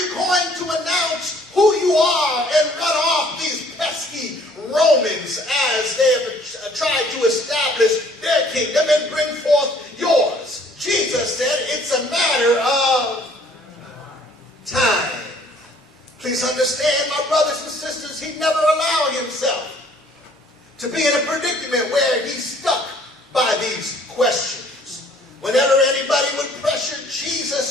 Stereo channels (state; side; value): normal; both; correlation 0.58